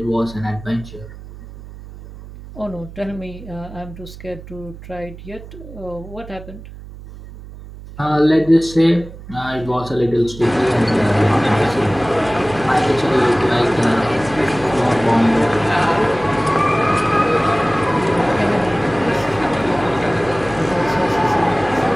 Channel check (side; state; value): right; noise; hum, 16 dB below the sound